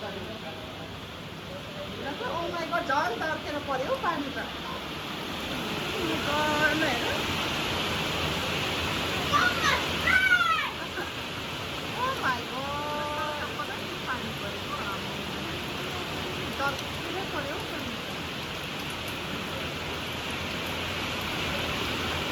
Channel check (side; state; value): both; identical; correlation 1.00